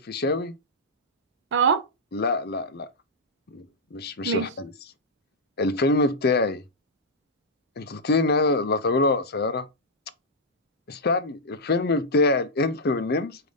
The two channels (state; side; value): normal; both; correlation -0.08